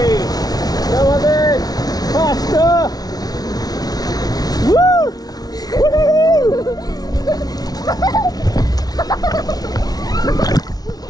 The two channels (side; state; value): right; late; 0.19 ms